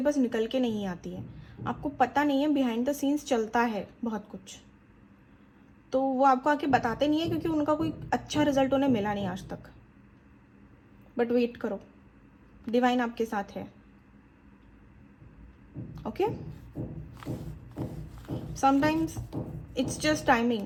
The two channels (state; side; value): identical; both; correlation 1.00